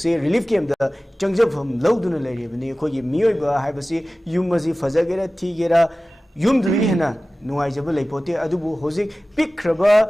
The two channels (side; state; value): both; normal; correlation 0.97